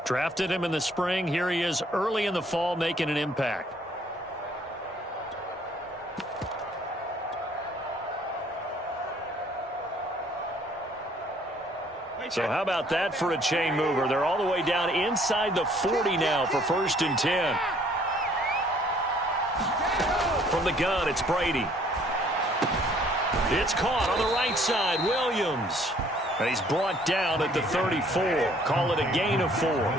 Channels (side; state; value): both; normal; correlation 0.60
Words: Drafted him in the spring. Here he is early in the fall making an impact. So how about that for a chain mover? They're all the way down inside the 40 now for 1st and 10. From the gun, it's Brady. It's caught on the right side, Williams. And he's brought down at the 34. Call it a gain of 4.